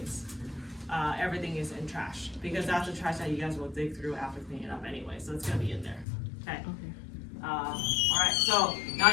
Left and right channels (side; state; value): right; drops out; at 6.1 s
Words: Everything is in trash because that's the trash that you guys will dig through after cleaning it up anyway. So it's gonna be in there, okay? All right, so now